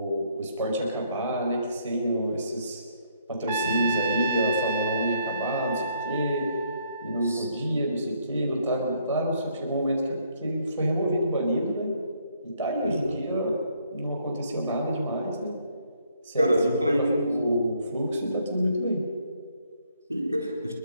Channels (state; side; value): inverted; both; correlation -0.69